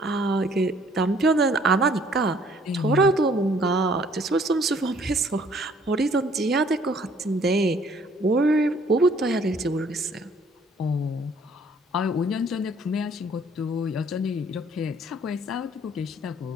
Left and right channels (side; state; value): both; normal; correlation 0.60